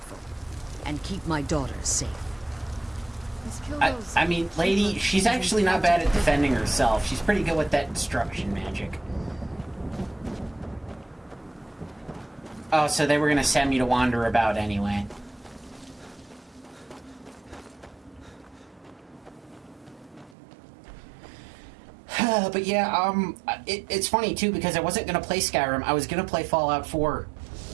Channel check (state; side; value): drops out; left; at 20.4 s